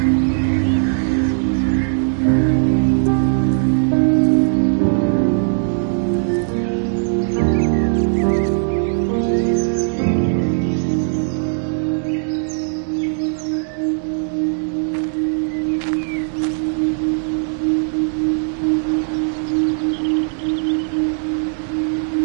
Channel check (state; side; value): silent; left; digital silence